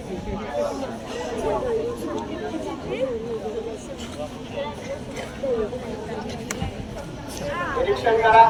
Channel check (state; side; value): identical; both; correlation 1.00